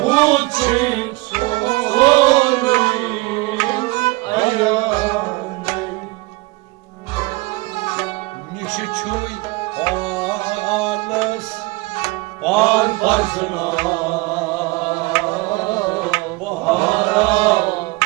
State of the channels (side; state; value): left; quieter; 23.3 dB